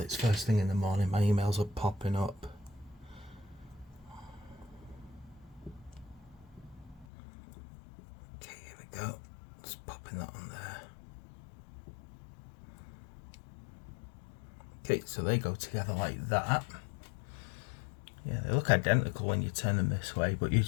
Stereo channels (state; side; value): drops out; right; at 7.1 s